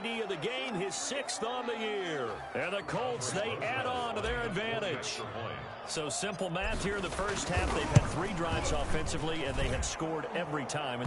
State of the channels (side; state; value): both; identical; correlation 1.00